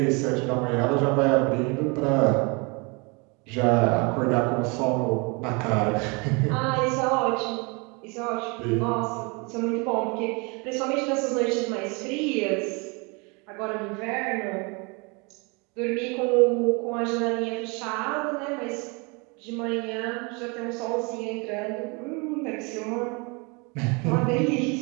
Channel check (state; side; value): quieter; left; 30.2 dB